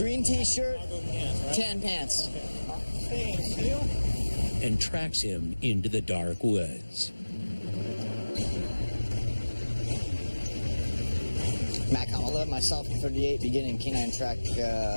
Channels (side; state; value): both; inverted; correlation -1.00